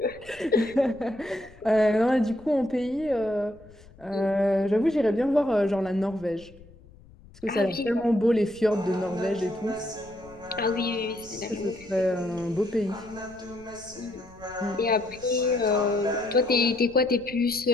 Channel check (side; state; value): left; noise; rumble, 23 dB below the sound